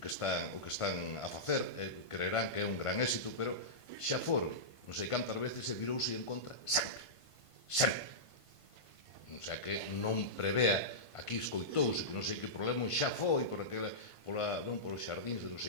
están a facer, creerán que é un gran éxito, pero xa foron non sei cantas veces e virouse en contra sempre. O sea que non prevea, aquí escoitouse que non sei que problema xa foi por os xardíns de non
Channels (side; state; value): right; late; 1.5 ms